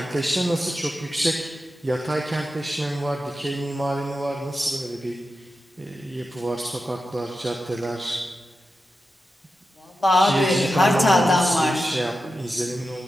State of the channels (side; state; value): both; normal; correlation 0.91